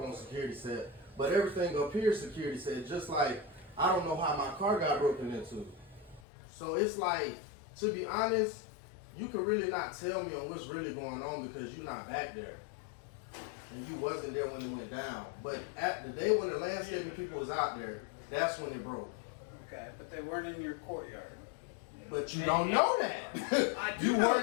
on security set. But everything up here is security set. Just like, I don't know how my car got broken into. So it's like, to be honest, you can really not tell me on what's really going on because you're not back there. And you wasn't there when it went down. But at the day when the landscaping people was out there, that's when it broke. Okay, but they weren't in your courtyard. But you don't know that. I do You know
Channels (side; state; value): right; drops out; at 6.2 s